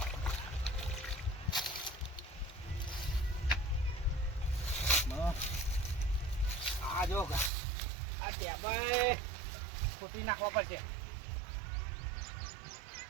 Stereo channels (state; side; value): drops out; left; at 7.5 s